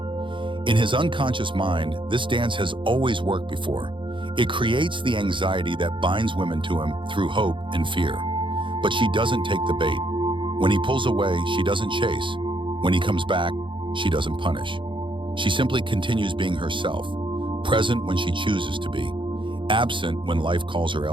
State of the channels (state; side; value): late; left; 0.24 ms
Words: In his unconscious mind, this dance has always worked before. It creates the anxiety that binds women to him through hope and fear. But she doesn't take the bait. When he pulls away, she doesn't chase. When he comes back, she doesn't punish. She simply continues being herself, present when she chooses to be, absent when life calls her